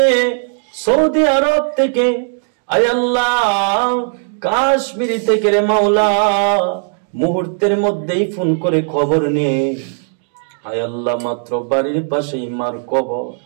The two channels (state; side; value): silent; left; digital silence